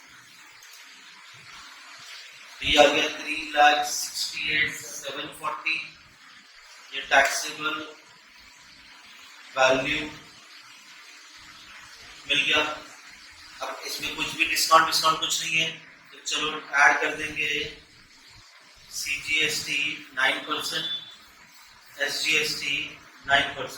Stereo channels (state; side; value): identical; both; correlation 1.00